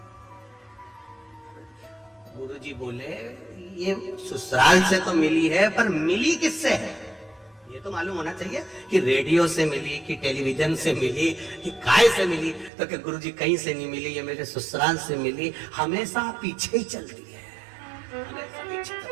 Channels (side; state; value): left; drops out; at 12.7 s